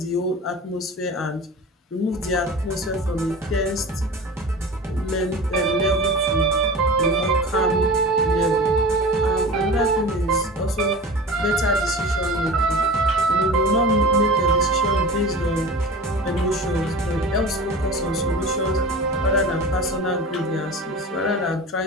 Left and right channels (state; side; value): normal; both; correlation 0.35